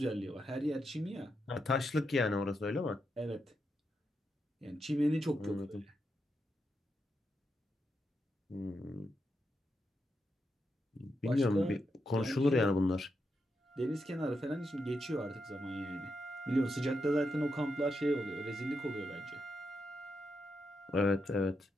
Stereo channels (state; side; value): normal; both; correlation 0.84